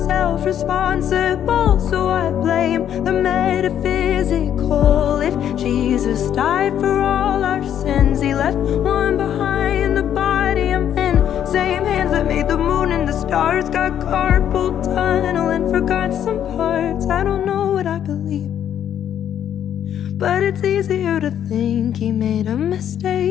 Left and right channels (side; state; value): right; quieter; 9.9 dB